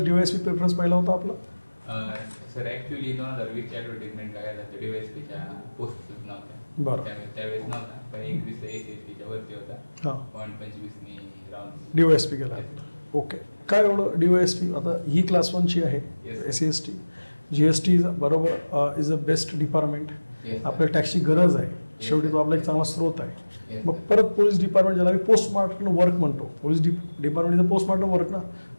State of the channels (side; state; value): both; inverted; correlation -1.00